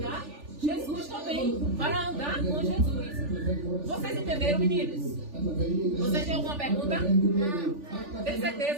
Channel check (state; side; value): late; left; 3.4 ms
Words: Jesus também. Para andar com Jesus. Vocês entenderam, meninos? Vocês têm alguma pergunta? Não. Tem